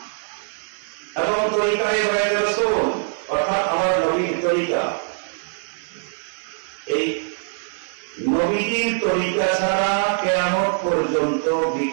এবং তরিকায় বায়াত রাসূল অর্থাৎ আমার নবীর তরিকা, এই নবীর তরিকা ছাড়া কিয়ামত পর্যন্ত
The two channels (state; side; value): silent; left; digital silence